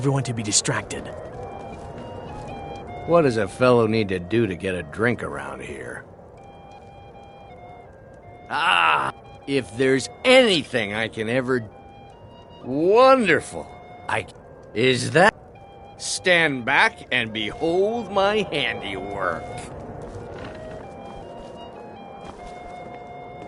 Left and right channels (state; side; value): identical; both; correlation 1.00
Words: to be distracted. What does a fellow need to do to get a drink around here? Ah! If there's anything I can ever... Wonderful! Is that... Stand back and behold my handiwork.